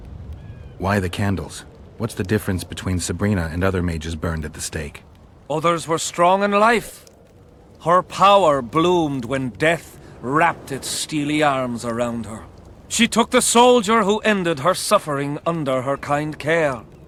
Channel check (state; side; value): identical; both; correlation 1.00